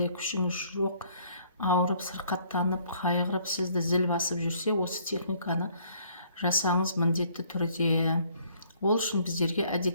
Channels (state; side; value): inverted; both; correlation -0.62